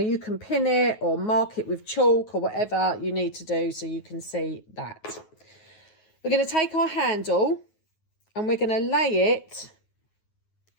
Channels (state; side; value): late; right; 9.4 ms